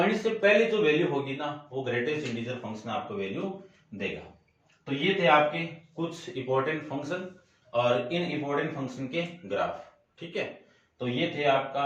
से पहले जो वैल्यू होगी ना वो ग्रेटेस्ट इंटीजर फंक्शन आपको वैल्यू देगा। तो ये थे आपके कुछ इंपॉर्टेंट फंक्शन और इन इंपॉर्टेंट फंक्शन के ग्राफ, ठीक है। तो ये थे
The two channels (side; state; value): both; identical; correlation 1.00